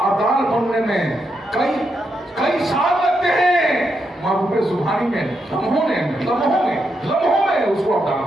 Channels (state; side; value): normal; both; correlation 0.82